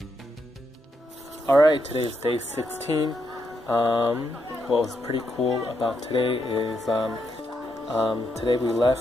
Alright, today is day 16. What was pretty cool about today is today we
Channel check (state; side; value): normal; both; correlation 0.80